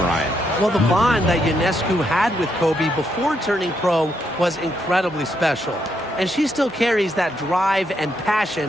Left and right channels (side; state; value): both; normal; correlation 0.78